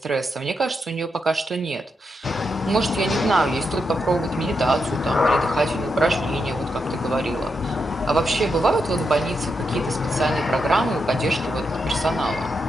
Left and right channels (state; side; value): normal; both; correlation 0.84